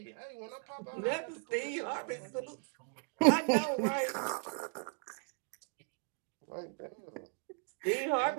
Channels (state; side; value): quieter; left; 38.1 dB